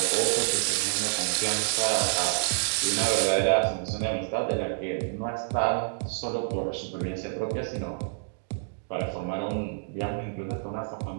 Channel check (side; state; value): left; silent; digital silence